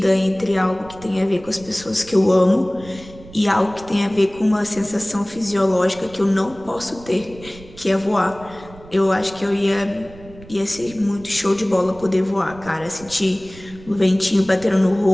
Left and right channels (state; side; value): noise; right; rumble, 19 dB below the sound